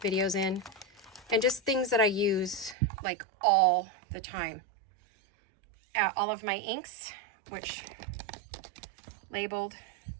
videos in, and just things that I use like all the time. All of my inks, which labeled,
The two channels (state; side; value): drops out; left; at 2.8 s